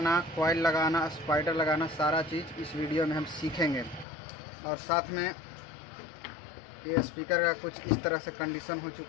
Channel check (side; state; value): right; drops out; at 4.0 s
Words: कॉइल लगाना, स्पाइडर लगाना, सारा चीज़ इस वीडियो में हम सीखेंगे। और साथ में ये स्पीकर का कुछ इस तरह से कंडीशन हो